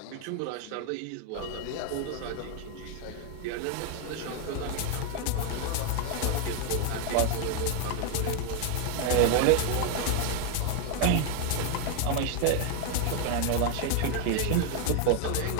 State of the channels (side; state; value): both; different; correlation 0.01